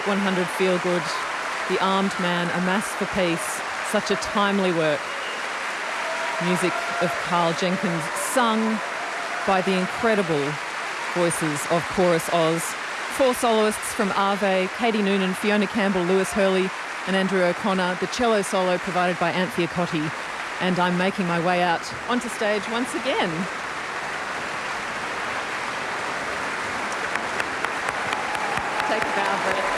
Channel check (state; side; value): identical; both; correlation 1.00